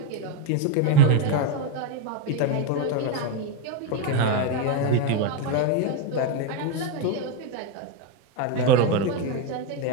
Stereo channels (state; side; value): different; both; correlation 0.02